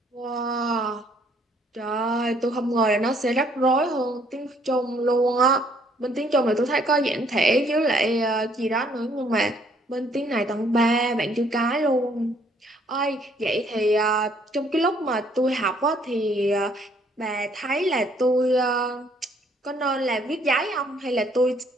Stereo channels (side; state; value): both; normal; correlation 0.64